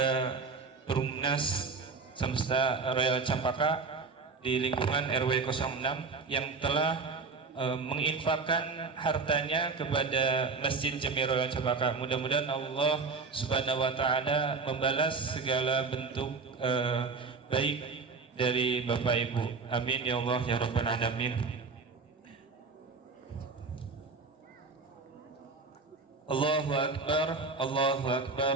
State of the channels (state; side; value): quieter; left; 4.5 dB